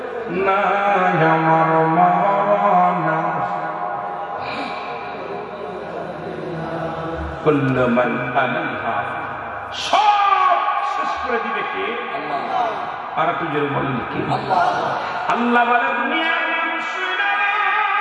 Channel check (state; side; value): identical; both; correlation 1.00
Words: না, আমার মরণ কুল্লু মান আলাইহা, সব শেষ করে দিবে কে? আল্লাহ। আর একটু জোরে বলেন কে? আল্লাহ। আল্লাহ বলে, দুনিয়ার মানুষেরা